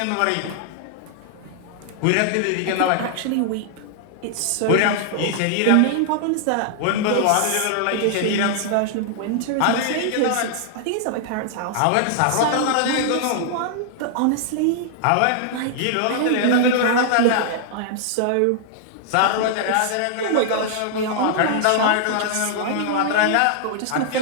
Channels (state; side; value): different; both; correlation -0.01